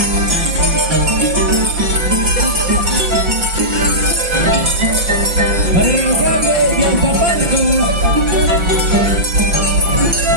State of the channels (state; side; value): late; left; 5.8 ms